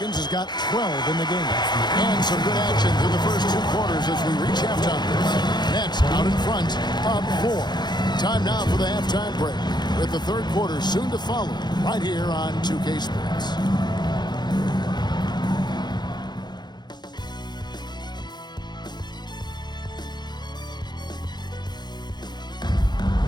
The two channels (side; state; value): right; late; 0.21 ms